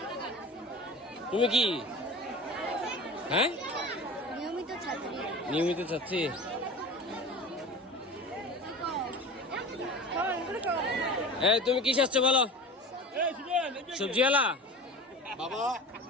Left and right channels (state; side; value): normal; both; correlation 0.35